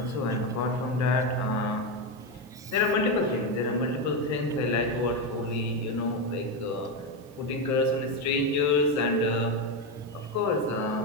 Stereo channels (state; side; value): normal; both; correlation 0.10